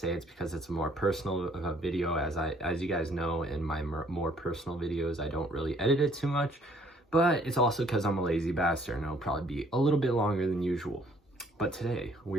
it's because it's a more personal video. As you guys know, in my more personal videos I don't really edit it too much, but it's also because I'm a lazy bastard and it'll probably be a little bit longer than usual. But today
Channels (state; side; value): normal; both; correlation 0.62